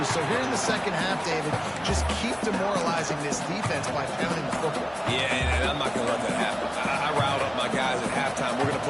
So here in the second half, David, just keep demoralizing this defense by pounding the football. Yeah, and I'm not going to let that happen. I riled up my guys at halftime. We're going to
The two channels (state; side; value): identical; both; correlation 1.00